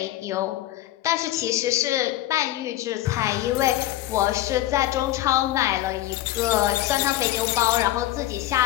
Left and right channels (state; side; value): quieter; right; 14.8 dB